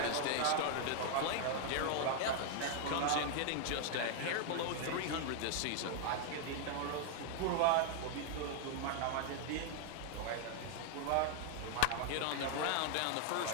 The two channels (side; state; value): both; different; correlation 0.00